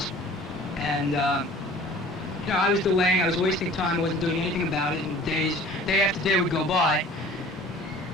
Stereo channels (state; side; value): normal; both; correlation 0.47